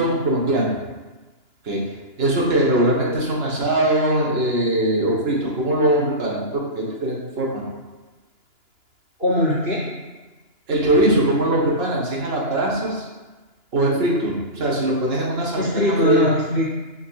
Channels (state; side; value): late; left; 2.9 ms